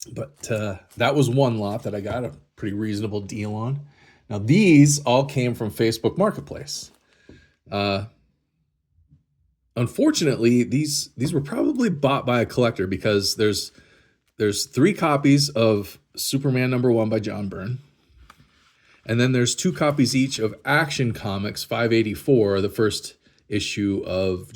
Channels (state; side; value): identical; both; correlation 1.00